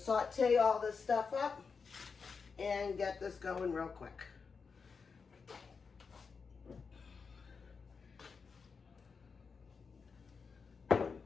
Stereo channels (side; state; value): right; quieter; 5.3 dB